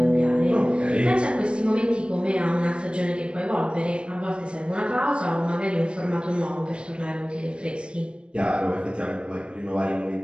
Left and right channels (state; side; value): late; left; 0.056 ms